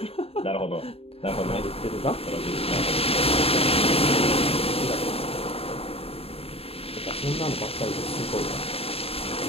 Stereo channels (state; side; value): late; right; 0.28 ms